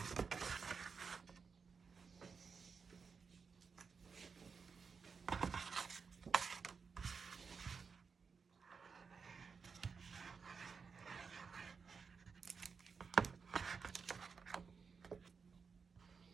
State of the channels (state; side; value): quieter; left; 5.5 dB